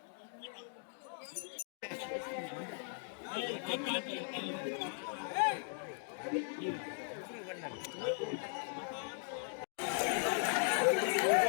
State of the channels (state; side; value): silent; right; 52 dB below the other